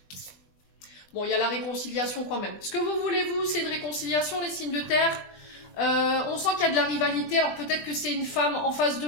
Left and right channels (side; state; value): right; late; 20 ms